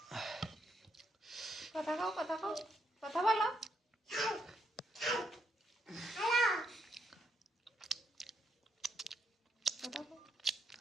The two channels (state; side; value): normal; both; correlation 0.77